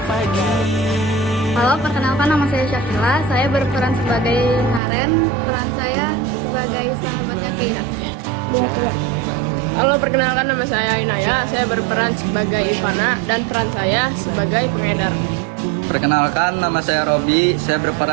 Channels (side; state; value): left; drops out; at 4.8 s